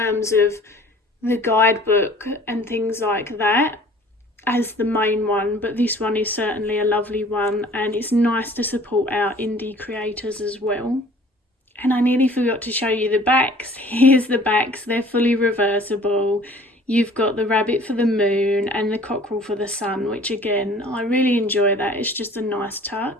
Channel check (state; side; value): normal; both; correlation 0.50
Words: of the guidebook and things like that as the main one, but this one is certainly a lovely one, and it's nice to support our indie creators as well. And I nearly forgot to show you the backs. Here's the backs. They're fully reversible. You've got the rabbit for the moon and the cockerel for the sun, which again, I really enjoy that. It's just a nice